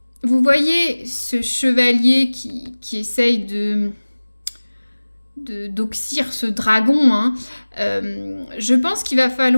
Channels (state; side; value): inverted; both; correlation -1.00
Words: Vous voyez ce chevalier qui essaye d'oxyre ce dragon, hein. Je pense qu'il va